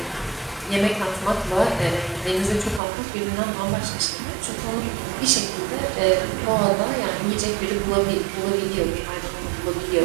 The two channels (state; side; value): drops out; left; at 2.8 s